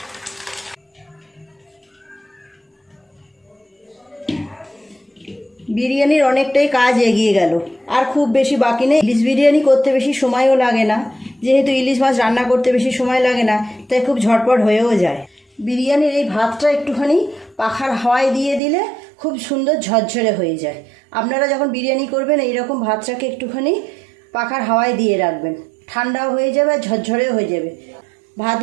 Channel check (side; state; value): left; drops out; at 18.6 s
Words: বিরিয়ানির অনেকটাই কাজ এগিয়ে গেল, আর খুব বেশি বাকি নেই। ইলিশ বিরিয়ানি করতে বেশি সময়ও লাগে না, যেহেতু ইলিশ মাছ রান্না করতে বেশি সময় লাগে না, তাই খুব ঝটপট হয়েও যায়। বিরিয়ানির এই ভাতটা একটুখানি পাখার হাওয়ায় দিয়ে দিলে খুব সুন্দর ঝরঝরে হয়ে যায়। আপনারা যখন বিরিয়ানি করবেন এইরকম ভাতটাকে একটুখানি পাখার হাওয়ায় দিয়ে রাখবেন, ঠান্ডাও হয়ে যাবে আর ঝরঝরেও হয়ে যাবে।